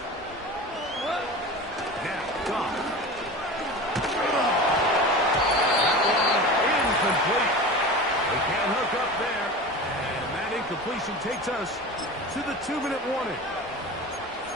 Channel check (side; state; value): both; normal; correlation 0.32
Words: Now, Goff. That one incomplete. They can't hook up there. And that incompletion takes us to the 2-minute warning.